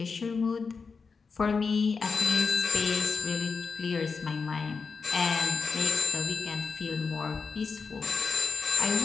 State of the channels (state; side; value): quieter; right; 5.0 dB